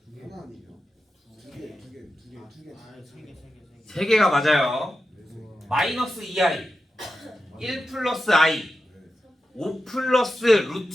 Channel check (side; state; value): both; normal; correlation 0.90